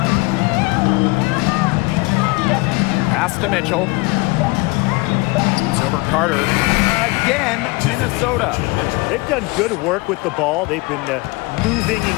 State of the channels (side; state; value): right; quieter; 24.3 dB